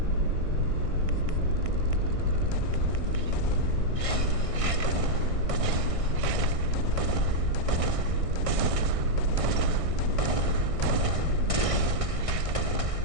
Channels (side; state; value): left; late; 1.6 ms